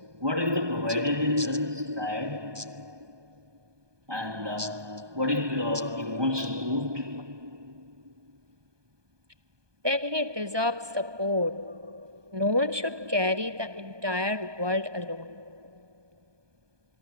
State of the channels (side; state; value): left; late; 1.2 ms